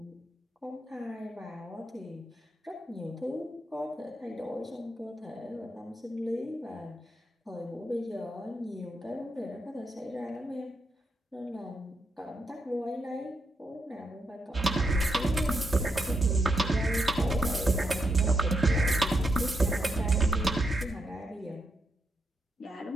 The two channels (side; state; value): both; normal; correlation 0.81